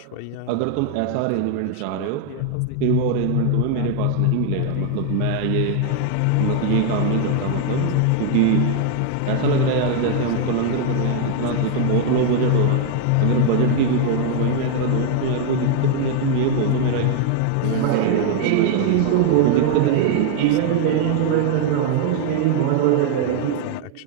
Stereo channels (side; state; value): both; different; correlation 0.00